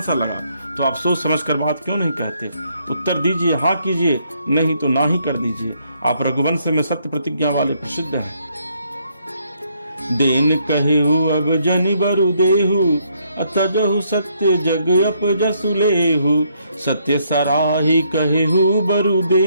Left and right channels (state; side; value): inverted; both; correlation -0.72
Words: सा लगा तो आप सोच समझ कर बात क्यों नहीं कहते? उत्तर दीजिए, हाँ कीजिए, नहीं तो ना ही कर दीजिए। आप रघुवंश में सत्य प्रतिज्ञा वाले प्रसिद्ध हैं। देन कहेहु अब जनि बरु देहु, अतजहु सत्य जग अपजसु लेहु। सत्य सराही कहेहु बरु